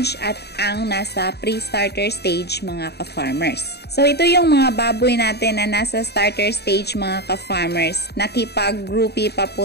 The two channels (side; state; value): right; late; 0.48 ms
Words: at ang nasa pre-starter stage mga ka-farmers. So ito yung mga baboy natin na nasa starter stage mga ka-farmers. Nakipag-groupie pa